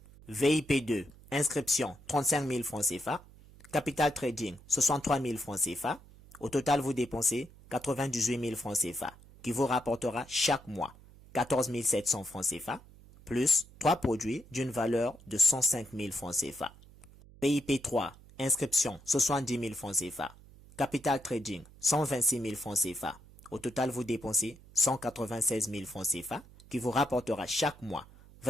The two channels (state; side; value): noise; right; hum, 22 dB below the sound